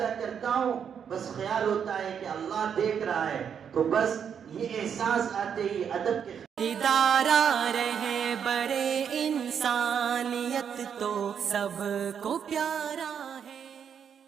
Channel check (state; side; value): quieter; left; 7.7 dB